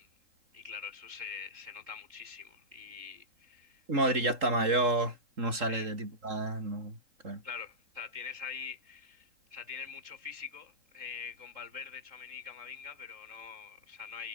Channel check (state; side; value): late; left; 3.8 ms